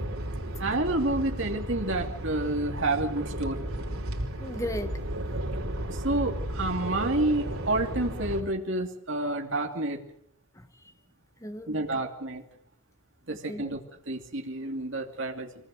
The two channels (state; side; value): normal; both; correlation 0.22